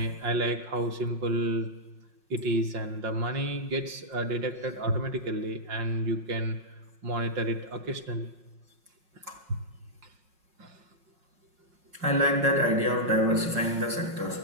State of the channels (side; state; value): left; late; 5.5 ms